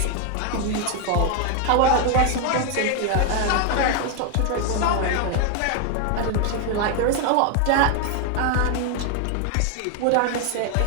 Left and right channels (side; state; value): both; different; correlation 0.01